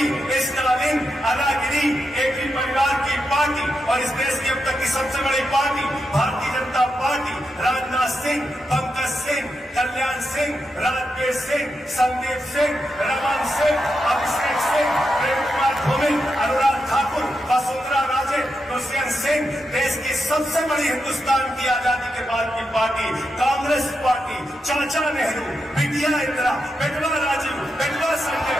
स्टालिन, अनागिरी, एक ही परिवार की पार्टी और इस देश की अब तक की सबसे बड़ी पार्टी भारतीय जनता पार्टी, राजनाथ सिंह, पंकज सिंह, कल्याण सिंह, राजवीर सिंह, संदीप सिंह, रमन सिंह, अभिषेक सिंह, प्रेम कुमार धूमिल, अनुराग ठाकुर, वसुंधरा राजे, दुष्यंत सिंह, देश की सबसे बड़ी हिंदुस्तान की आजादी के बाद की पार्टी कांग्रेस पार्टी, चाचा नेहरू, बिटिया इंदिरा, बेटवा राजीव, बेटवा संजय,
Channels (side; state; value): both; normal; correlation 0.86